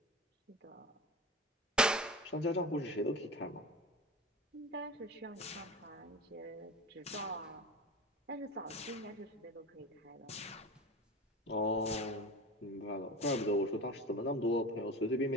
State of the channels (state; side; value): normal; both; correlation 0.31